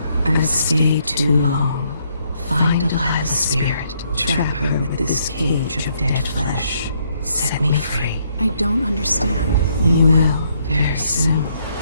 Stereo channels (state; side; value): inverted; both; correlation -0.72